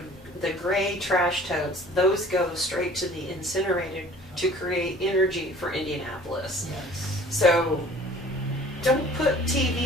gray trash totes. Those go straight to the incinerator to create energy for Indianapolis. Yes. So don't put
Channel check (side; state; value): left; noise; hum, 25 dB below the sound